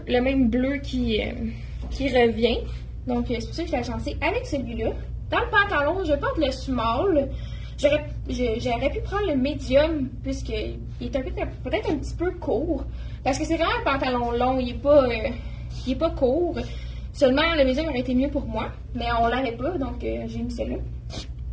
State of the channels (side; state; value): both; identical; correlation 1.00